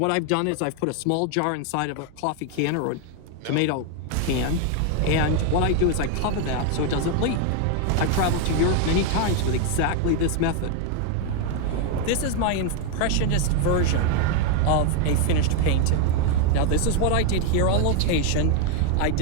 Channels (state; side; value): different; both; correlation 0.01